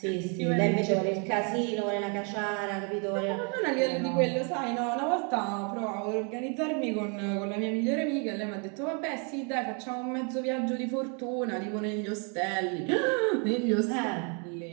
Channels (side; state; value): left; quieter; 37.0 dB